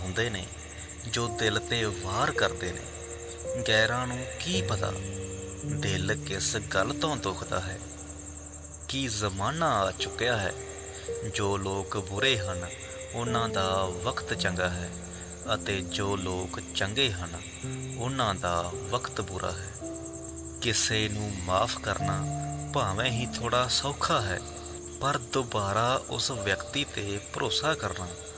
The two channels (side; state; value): both; identical; correlation 1.00